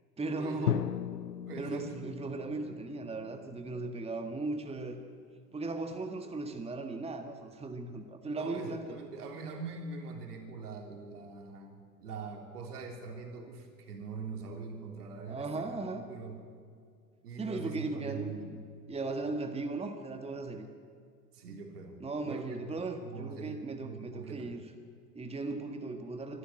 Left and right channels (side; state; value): both; normal; correlation 0.41